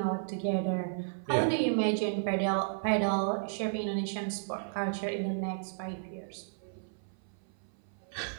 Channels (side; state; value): left; silent; 56 dB below the other